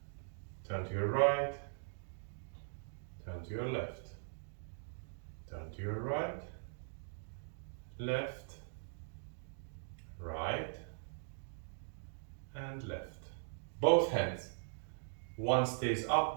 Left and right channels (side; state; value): left; silent; digital silence